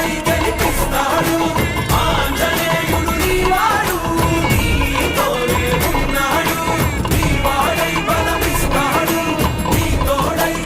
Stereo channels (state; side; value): identical; both; correlation 1.00